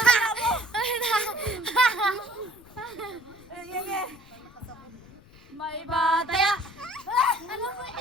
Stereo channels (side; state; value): left; noise; rumble, 24 dB below the sound